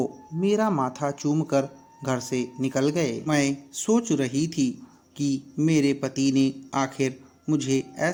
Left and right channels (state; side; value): identical; both; correlation 1.00